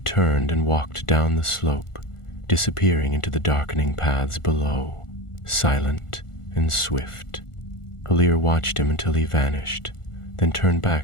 and walked down the slope, disappearing into the darkening paths below, silent and swift. Elir watched him until he vanished, then turned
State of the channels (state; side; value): late; right; 1.4 ms